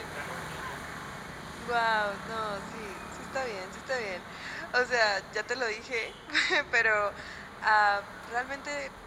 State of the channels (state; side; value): identical; both; correlation 1.00